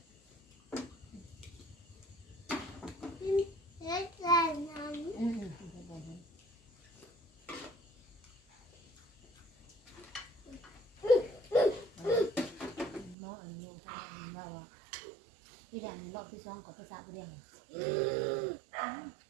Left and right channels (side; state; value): left; drops out; at 13.2 s